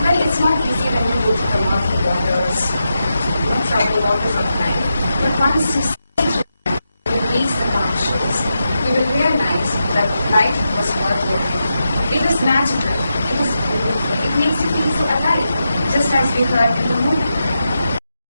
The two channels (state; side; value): inverted; both; correlation -0.88